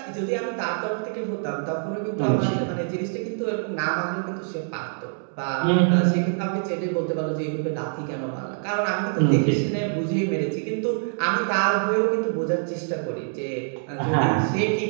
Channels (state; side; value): silent; left; 59 dB below the other